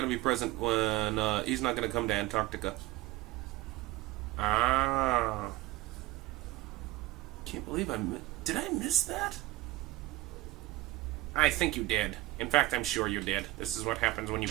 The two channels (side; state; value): left; quieter; 17.9 dB